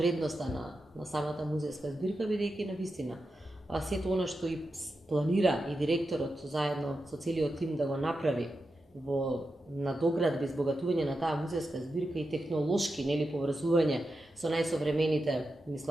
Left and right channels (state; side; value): normal; both; correlation 0.89